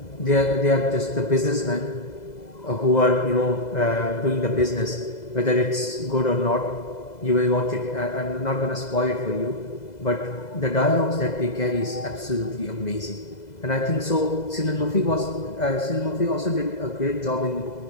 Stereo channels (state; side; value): late; right; 2.0 ms